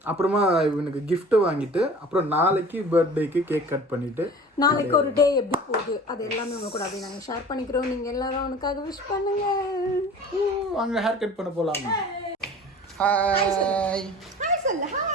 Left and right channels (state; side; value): normal; both; correlation 0.42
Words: அப்புறமா இவனுக்கு gift வாங்கிட்டு அப்புறம் நாளைக்கு பர்த்டேக்கு கேக் கட் பண்ணிட்டு நாளைக்கு ஒரு டே எப்படி போகுது அது எல்லாமே உங்க கூட அப்படியே நாங்கள் ஷேர் பண்ணிக்கிறோம். நீங்கள் எல்லாரும் அவனுக்காக விஷ் பண்ணுங்க. வாங்க ஹேர் கட் பண்ண போலாம். ஹாய் ஹாய் சொல்லு,